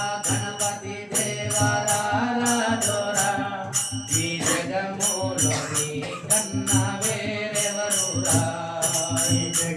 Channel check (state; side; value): identical; both; correlation 1.00